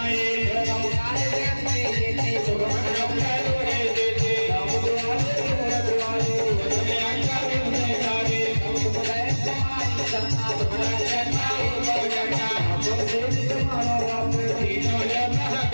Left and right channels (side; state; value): both; inverted; correlation -1.00